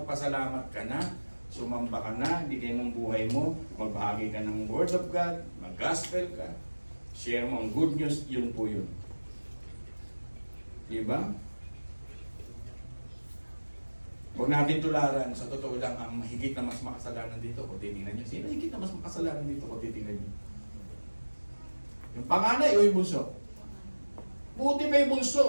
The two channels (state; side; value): inverted; both; correlation -1.00